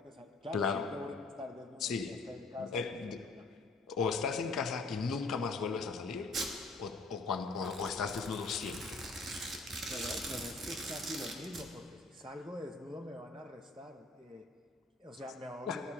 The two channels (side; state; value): right; quieter; 3.5 dB